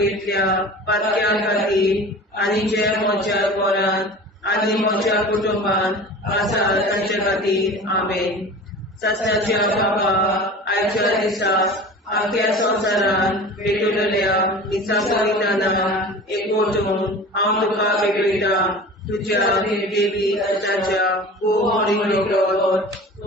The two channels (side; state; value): both; normal; correlation 0.38